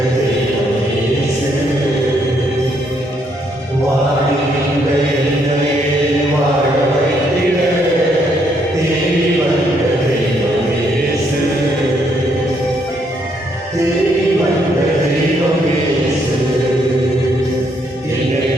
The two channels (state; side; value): normal; both; correlation 0.72